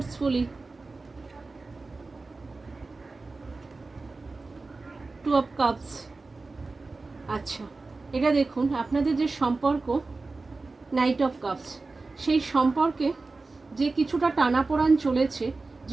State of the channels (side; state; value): left; quieter; 3.7 dB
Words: two of cups. আচ্ছা, এটা দেখুন আপনাদের যে সম্পর্ক, নাইট অফ কাপস, সেই সম্পর্কে যে কিছুটা টানাপোড়ান চলেছে,